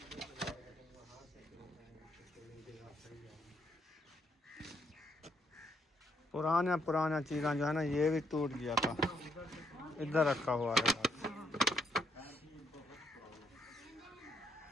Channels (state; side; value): normal; both; correlation 0.73